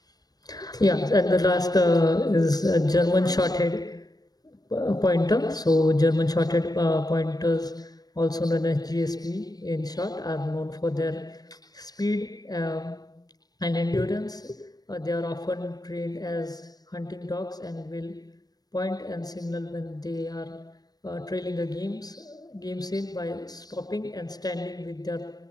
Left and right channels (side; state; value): right; late; 0.19 ms